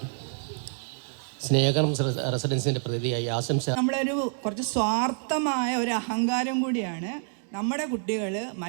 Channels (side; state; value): left; silent; digital silence